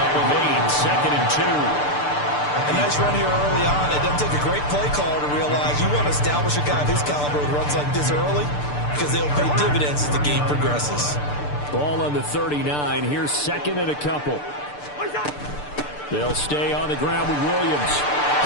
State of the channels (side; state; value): right; late; 6.8 ms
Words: of 8, 2nd and 2. A nice run here early on. It doesn't take a great play caller to realize you want to establish a guy of his caliber who runs like this early, because they'll pay dividends as the game progresses. Ball on the 39. Here's 2nd and a couple. They'll stay on the ground with Williams.